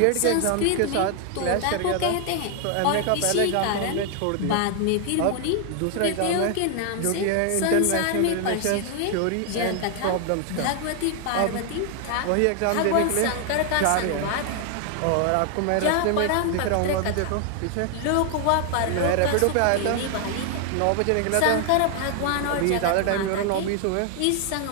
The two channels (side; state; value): both; different; correlation 0.00